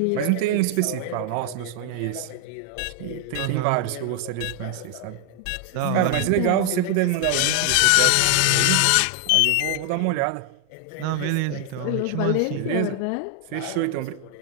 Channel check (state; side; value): different; both; correlation 0.00